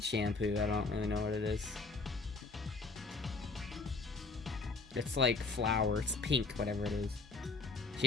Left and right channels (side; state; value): right; quieter; 3.9 dB